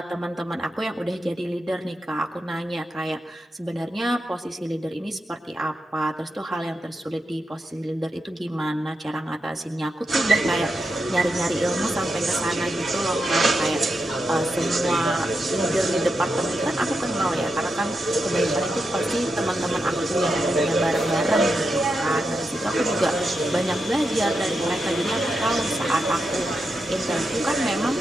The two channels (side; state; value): both; normal; correlation 0.86